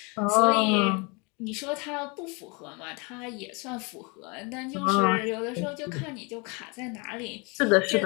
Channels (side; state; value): right; quieter; 30.1 dB